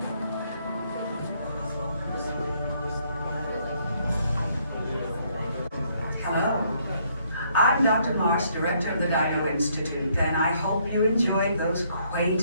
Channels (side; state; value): both; inverted; correlation -0.69